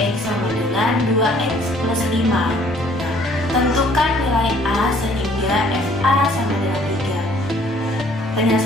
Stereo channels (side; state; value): both; normal; correlation 0.59